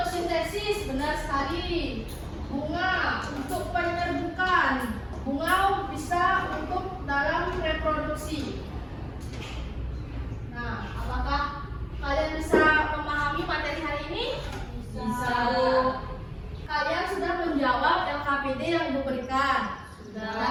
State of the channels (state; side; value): identical; both; correlation 1.00